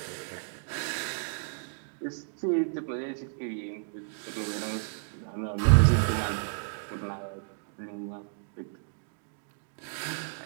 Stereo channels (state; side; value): silent; left; digital silence